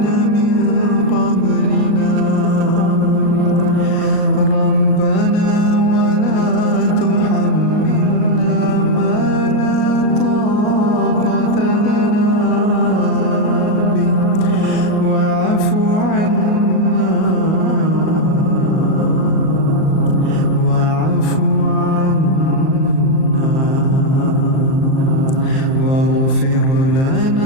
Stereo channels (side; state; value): right; late; 38 ms